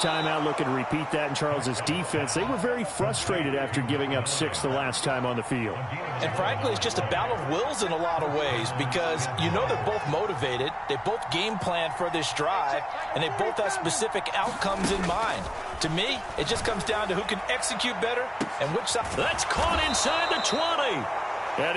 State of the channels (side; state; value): both; identical; correlation 1.00